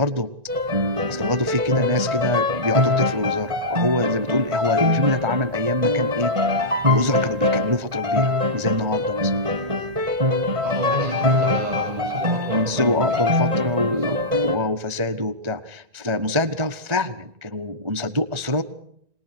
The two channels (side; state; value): left; late; 1.9 ms